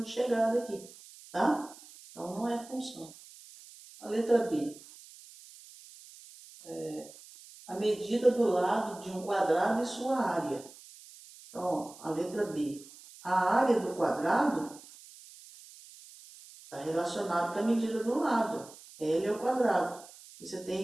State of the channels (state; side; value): noise; right; hiss, 20 dB below the sound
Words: de chegada aqui, tá? Então, não é função. A letra B. A medida do lado de um quadrado e sua área. Então, a letra B. A área do quadrado está relacionada com a medida do lado. L é o quadrado. E você